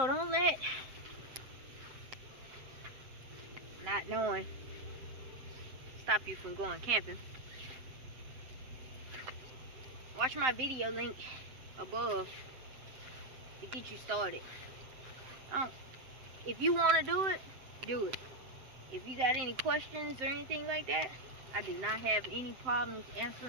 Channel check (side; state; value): left; late; 7.7 ms